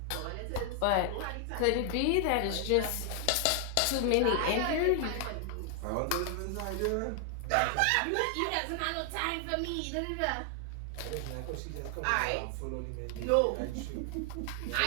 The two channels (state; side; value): different; both; correlation 0.00